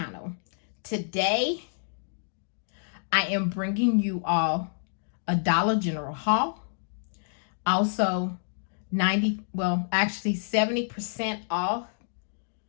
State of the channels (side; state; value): right; silent; digital silence